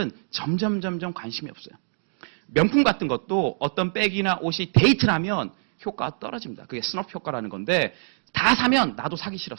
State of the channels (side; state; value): left; silent; digital silence